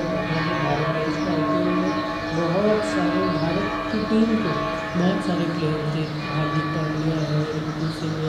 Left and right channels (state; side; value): identical; both; correlation 1.00